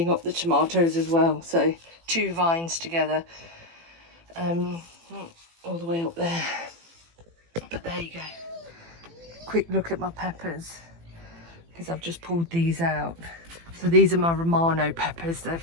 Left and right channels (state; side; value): late; left; 18 ms